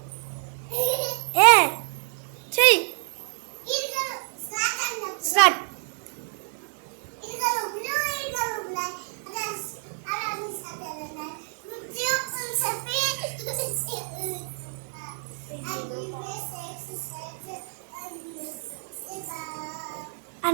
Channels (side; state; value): left; silent; 58 dB below the other